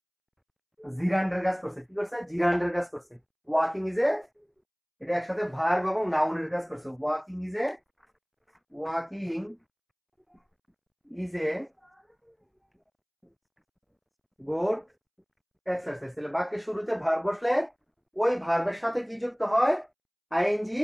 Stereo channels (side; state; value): both; identical; correlation 1.00